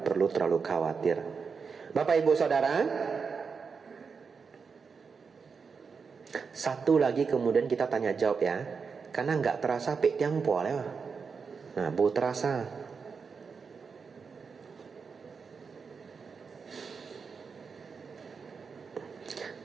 perlu terlalu khawatir. Bapak Ibu Saudara, satu lagi kemudian kita tanya jawab ya, karena nggak terasa pek tiang po lah. Nah, bu terasa.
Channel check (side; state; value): left; quieter; 5.4 dB